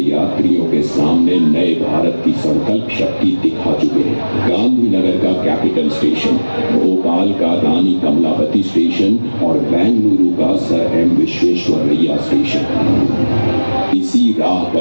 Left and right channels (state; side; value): inverted; both; correlation -1.00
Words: यात्रियों के सामने नए भारत की संकल्प शक्ति दिखा चुके हैं। गांधीनगर का कैपिटल स्टेशन, भोपाल का रानी कमलापति स्टेशन और बेंगलुरु का सर एम विश्वेश्वरैया स्टेशन। इसी राह